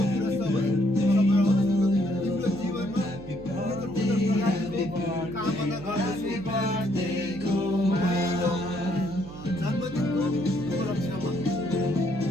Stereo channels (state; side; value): noise; right; hum, 14 dB below the sound